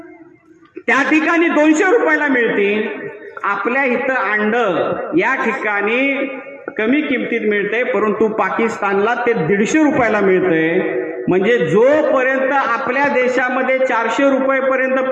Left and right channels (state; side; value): identical; both; correlation 1.00